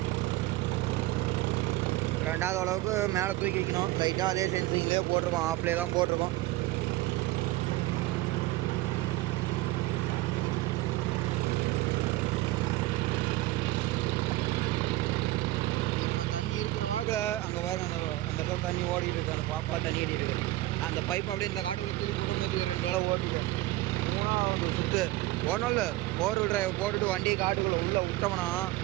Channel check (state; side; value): quieter; left; 17.7 dB